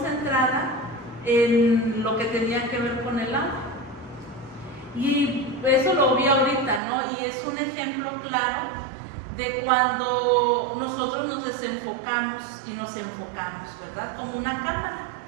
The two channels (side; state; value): left; drops out; at 6.8 s